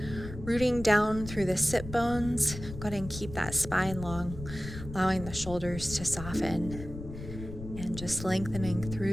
rooting down through the sit bones, go ahead and keep that spine long, allowing the shoulders to soften, and just lengthening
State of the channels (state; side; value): noise; left; rumble, 11 dB below the sound